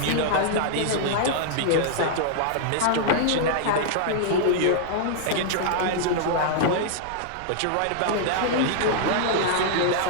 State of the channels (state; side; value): different; both; correlation -0.01